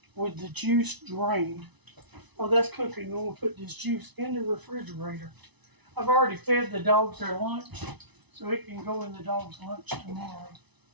with the juice drained. Oh, that's cooking. I'm going to put this juice in the refrigerator. I've already fed the dogs their lunch, so it can go in the dog's lunch tomorrow.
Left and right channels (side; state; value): left; late; 1.0 ms